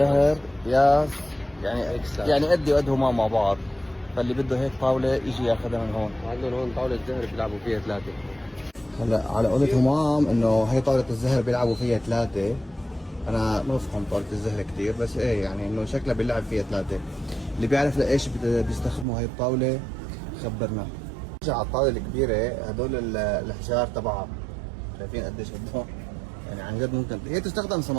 ياس، يعني إكسات. يعني قدي وقد هما مع بعض، فاللي بده هيك طاولة يجي ياخذها من هون. وعندهم هون طاولة زهر بيلعبوا فيها 3. هلا على قولة همام انه هي طاولة الزهر بيلعبوا فيها 3. انا ما بفهم طاولة الزهر كثير، بس ايه يعني انه شكلها بيلعب فيها 3. اللي بيعرف لايش بيستخدموا هي الطاولة خبرنا. نرجع على الطاولة الكبيرة، هدول الحجار تبعها شايفين قديش قدهم، يعني عن جد ممكن هي تستخدم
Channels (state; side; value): drops out; left; at 19.1 s